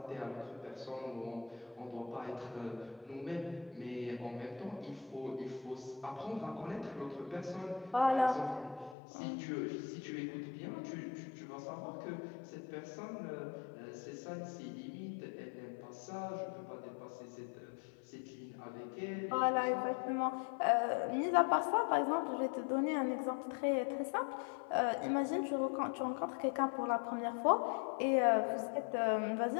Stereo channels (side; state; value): right; drops out; at 9.0 s